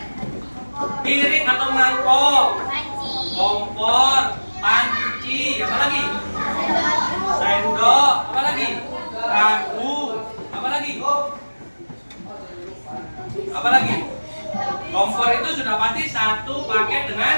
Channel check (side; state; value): both; inverted; correlation -1.00